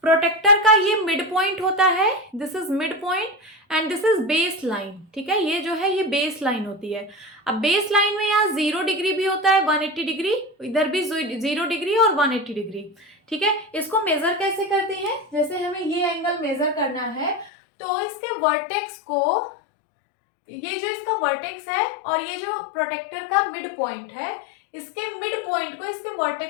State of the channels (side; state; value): right; drops out; at 17.5 s